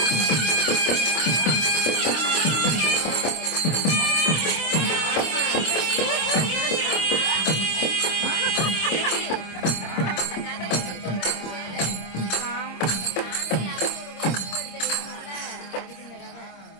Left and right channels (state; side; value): late; right; 26 ms